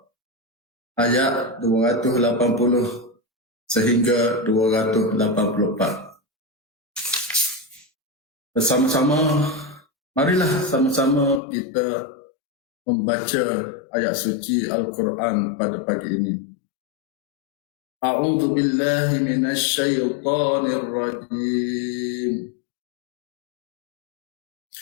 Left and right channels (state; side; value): drops out; right; at 11.4 s